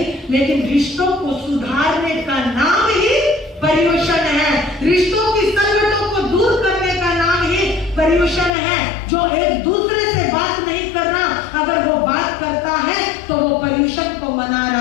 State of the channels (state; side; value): drops out; right; at 8.5 s